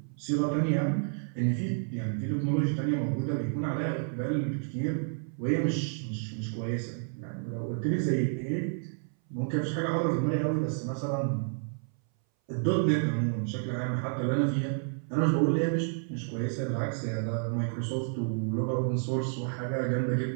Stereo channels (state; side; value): silent; left; 58 dB below the other